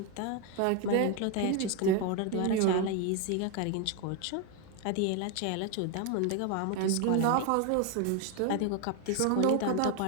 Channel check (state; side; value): different; both; correlation 0.01